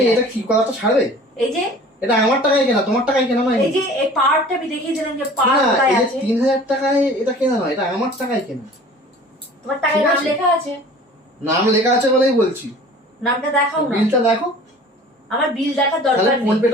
এটা যাচ্ছি। কি কথাটা ছাড়বে? এই যে এটা আমার টাকায় কেনা, তোমার টাকায় কেনা নয়। এই যে এই পার্টটা আমি দেখিয়েছিলাম যে পার্ট না, কোথায় এই যে আছে। 3,000 টাকায় এটা কেনা নয়, এটা আমার টাকায় কেনা। তোমার টাকায় ঠিক নাম আছে। লেখা আছে, নাম লেখা আছে বলেই বলছি। নামটা দেখাও না। বিলটা দেখো, আমার বিল দেখার তাহলে দরকার ফোন নেই,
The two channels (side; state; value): both; normal; correlation 0.46